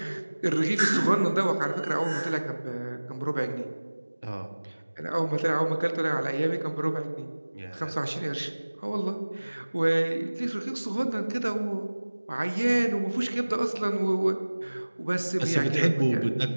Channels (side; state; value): both; inverted; correlation -1.00